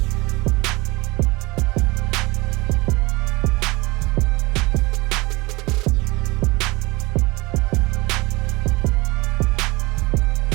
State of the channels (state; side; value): quieter; left; 23.1 dB